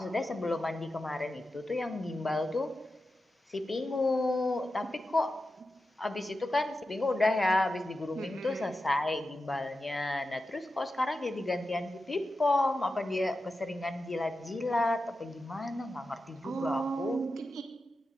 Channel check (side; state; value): both; normal; correlation 0.91